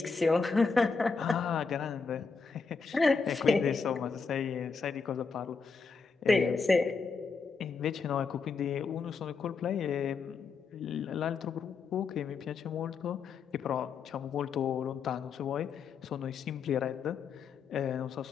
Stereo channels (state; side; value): quieter; right; 5.0 dB